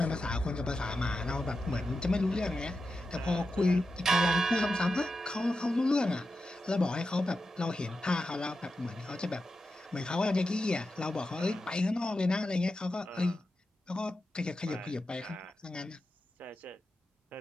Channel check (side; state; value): both; normal; correlation 0.90